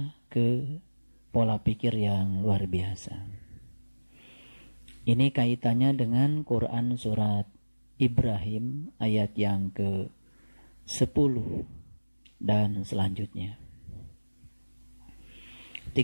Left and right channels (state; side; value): inverted; both; correlation -1.00